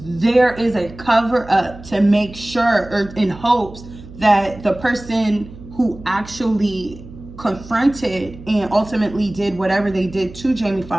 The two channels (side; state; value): right; noise; hum, 17 dB below the sound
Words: is a cover up to make sure, or in hopes that the person who actually confronted and ultimately did whatever they did to Jaime